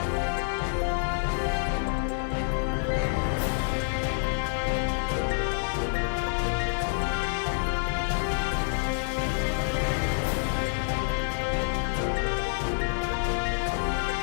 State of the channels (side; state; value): right; silent; 60 dB below the other